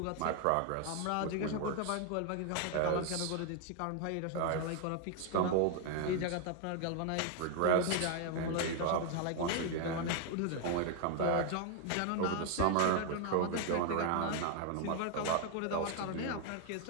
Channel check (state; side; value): different; both; correlation 0.00